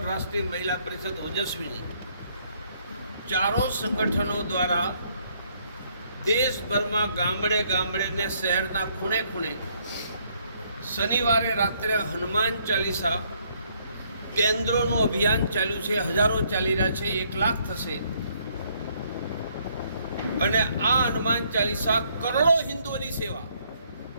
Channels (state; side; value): inverted; both; correlation -0.69